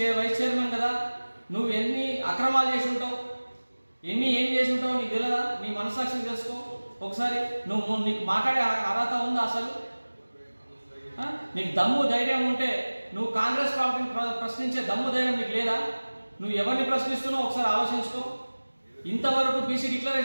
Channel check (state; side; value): inverted; both; correlation -1.00